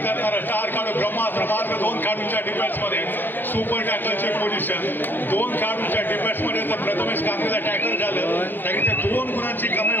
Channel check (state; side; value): late; right; 0.094 ms